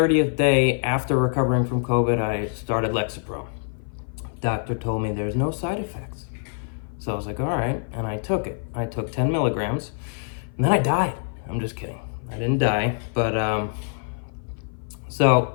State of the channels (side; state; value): right; silent; 55 dB below the other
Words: day after recovering from COVID, I started Lexapro. Doctor told me there's no side effects. So I was like, all right, and I took it. I took 10 milligrams, and then I died. I'm just kidding. I didn't die, but